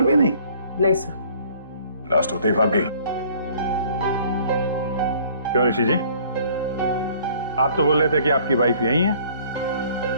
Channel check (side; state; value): both; inverted; correlation -0.56